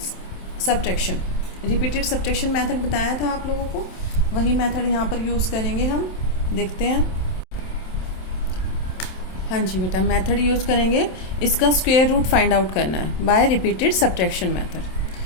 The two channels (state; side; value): late; right; 27 ms